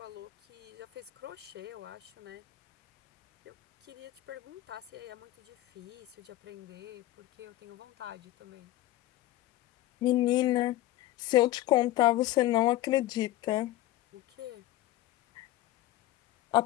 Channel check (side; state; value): right; quieter; 15.7 dB